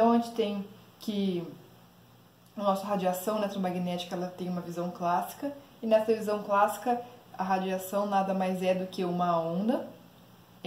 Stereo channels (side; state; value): both; identical; correlation 1.00